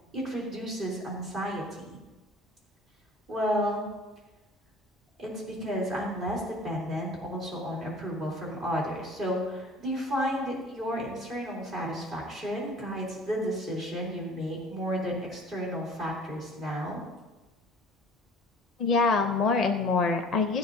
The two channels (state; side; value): normal; both; correlation 0.47